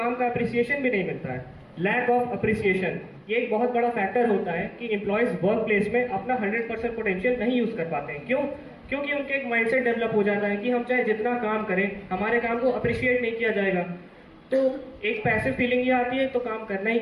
का अप्रिसिएशन भी नहीं मिलता है। लैक ऑफ अप्रिसिएशन ये एक बहुत बड़ा फैक्टर होता है कि एम्प्लॉयज वर्क प्लेस में अपना 100% पोटेंशियल नहीं यूज कर पाते हैं। क्यों? क्योंकि उनके एक माइंडसेट डेवलप हो जाता है कि हम चाहे जितना काम करें हमारे काम को अप्रिशिएट नहीं किया जाएगा। तो एक पैसिव फीलिंग ये आती है तो काम करना ही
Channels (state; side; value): identical; both; correlation 1.00